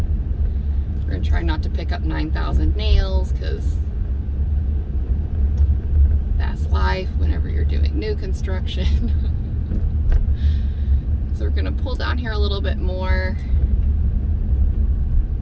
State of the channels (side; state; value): both; identical; correlation 1.00